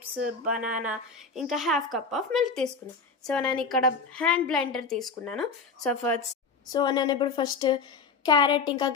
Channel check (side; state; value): right; quieter; 4.6 dB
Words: బనానా, ఇంకా హాఫ్ కప్ ఆఫ్ మిల్క్ తీసుకున్నాను. సో నేను ఇక్కడ హ్యాండ్ బ్లెండర్ తీసుకున్నాను. సో నేను ఇప్పుడు ఫస్ట్ క్యారెట్ ఇంకా